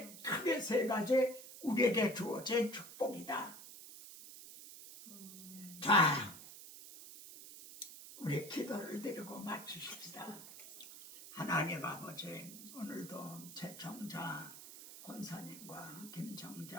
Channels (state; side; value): noise; right; hiss, 14 dB below the sound